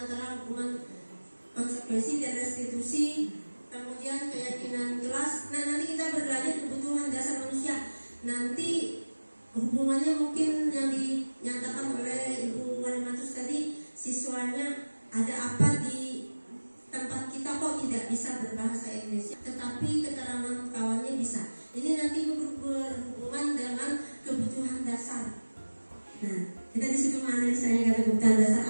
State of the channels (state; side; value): inverted; both; correlation -1.00